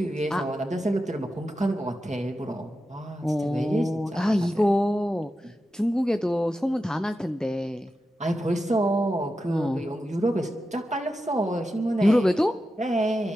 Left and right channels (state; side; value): normal; both; correlation 0.90